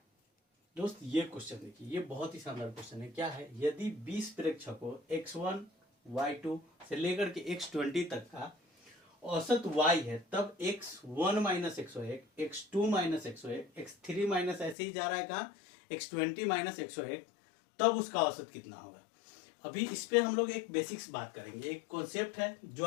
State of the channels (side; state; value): right; drops out; at 14.8 s